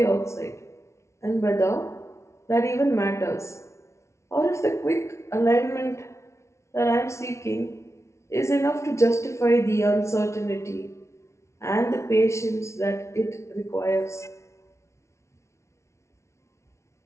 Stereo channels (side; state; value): right; late; 0.13 ms